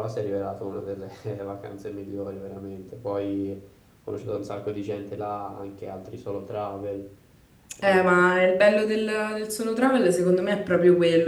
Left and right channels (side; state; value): both; identical; correlation 1.00